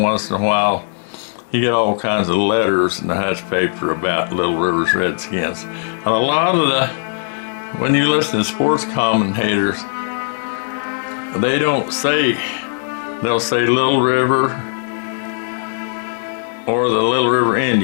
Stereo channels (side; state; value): right; silent; 66 dB below the other